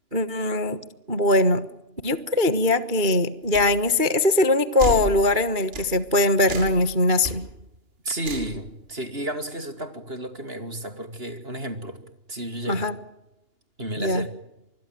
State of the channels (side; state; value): left; late; 2.9 ms